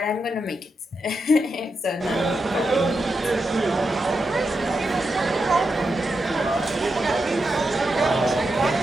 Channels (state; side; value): normal; both; correlation 0.86